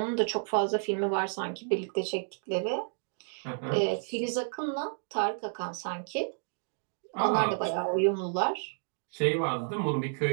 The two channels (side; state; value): left; silent; digital silence